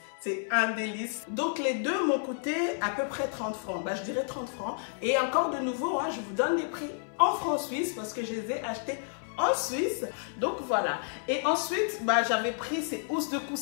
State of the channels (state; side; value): silent; right; 57 dB below the other